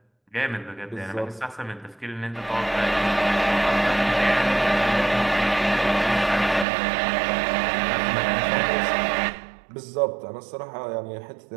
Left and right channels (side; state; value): left; drops out; at 6.7 s